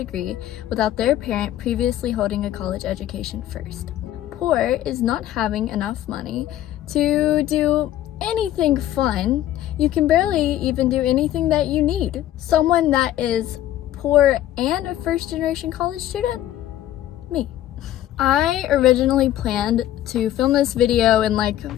without their parent previously holding a college education first. Poor is not having enough money to do anything fun. You can barely even do anything that you need. Someone that is poor and a first-generation college student? Me. I originally planned to film this video in like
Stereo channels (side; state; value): right; quieter; 13.0 dB